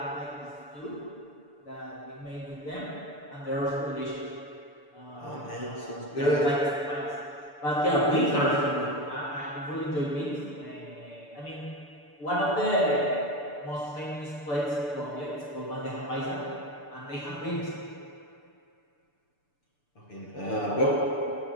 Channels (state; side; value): late; right; 6.9 ms